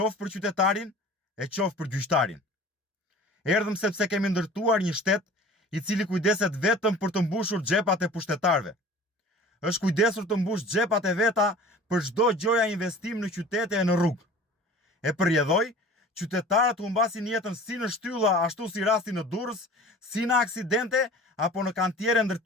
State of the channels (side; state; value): both; normal; correlation 0.43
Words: për qytetarin e qoftë për gjyqtarin? Erdhëm sepse kemi ndërtuar një shtet i cili kujdeset vetëm për të mbushur xhepat e pushtetarëve. Është kujdesur të mbush xhepat e veta për çdo gjoja investim në qytete e në rrugë. E përjedhoi, qytetarët humbasin jetën si në shtylla ashtu si rasti në Durrës, si në aksidente apo në kantiere